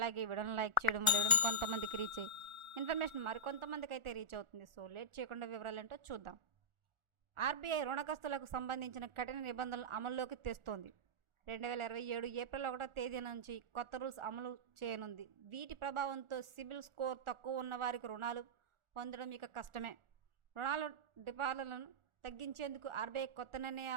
వీడియోని లైక్ చేయడం వల్ల వీడియో కొంతమందికి రీచ్ అయ్యి ఇన్ఫర్మేషన్ మరికొంతమందికి అయితే రీచ్ అవుతుంది. సో లేట్ చేయకుండా వివరాలు ఏంటో చూద్దాం. ఆర్బీఐ రుణగ్రస్తులకు సంబంధించిన కఠిన నిబంధనలు అమల్లోకి తెస్తోంది. 2027 ఏప్రిల్ 1వ తేదీ నుంచి కొత్త రూల్స్ అమలు చేయనుంది. వీటి ప్రభావంతో సిబిల్ స్కోర్ తక్కువ ఉన్న వారికి రుణాలు పొందడం ఇక కష్టమే. రుణాల డిపాజిట్లను తగ్గించేందుకు ఆర్బీఐ కొత్త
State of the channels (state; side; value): late; left; 1.4 ms